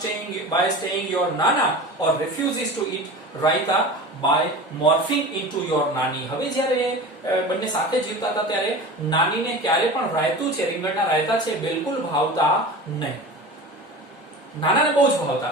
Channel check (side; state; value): both; normal; correlation 0.34